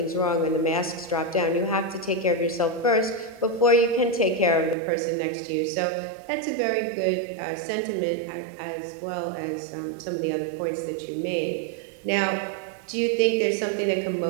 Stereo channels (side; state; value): left; drops out; at 4.8 s